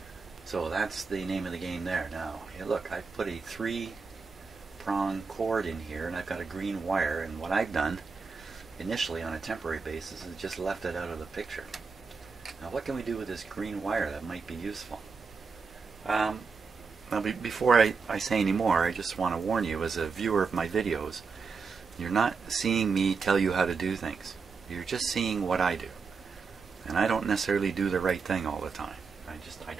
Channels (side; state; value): left; quieter; 5.0 dB